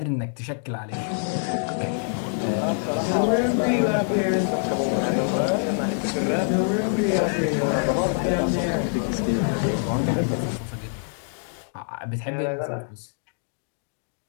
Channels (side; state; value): right; silent; 62 dB below the other